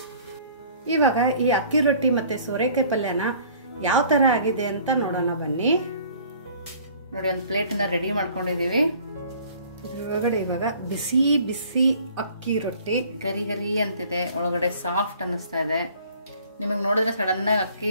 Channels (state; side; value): inverted; both; correlation -0.53